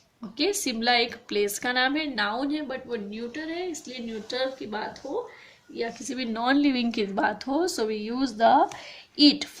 ओके, शिमला एक प्लेस का नाम है, नाउन है, बट वो न्यूटर है, इसलिए न्यूटर की बात हो या किसी भी नॉन लिविंग की बात हो, so we use the it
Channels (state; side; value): identical; both; correlation 1.00